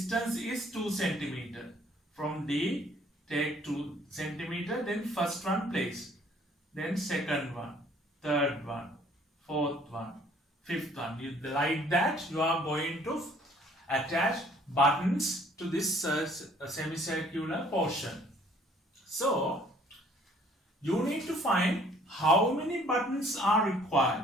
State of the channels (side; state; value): both; normal; correlation 0.58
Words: is 2 cm. From D, take 2 cm, then first one place, then second one, third one, fourth one, fifth one. Like that, you are going to attach buttons to this semicircular portion. So, you need to find how many buttons are